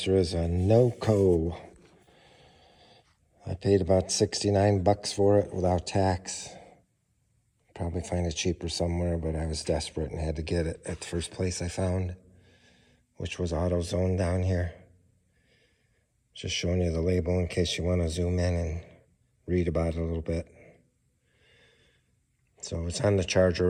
is a Noco. I paid about 69 bucks for it without tax. Probably find it cheaper somewhere, but I was desperate and had to get it at the first place I found, which was AutoZone down here. Just showing you the label in case you want to zoom in and read about it a little bit. So it's on the charger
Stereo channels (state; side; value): identical; both; correlation 1.00